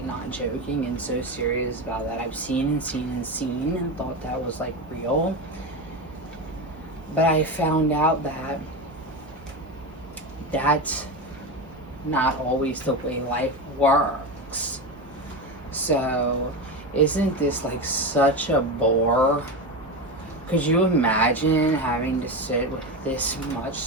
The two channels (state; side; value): normal; both; correlation 0.18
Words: not joking and so serious about that. I've seen and thought that was like real. But I found out that that's not always the way life works. So, isn't this like such a bore? Could you imagine having to sit with this much?